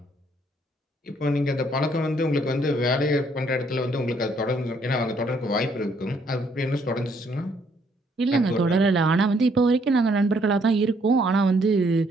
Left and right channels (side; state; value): both; normal; correlation 0.68